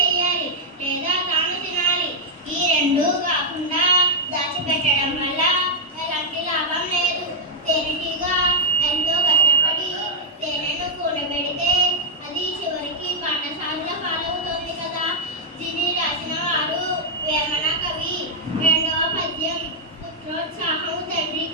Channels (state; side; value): normal; both; correlation -0.03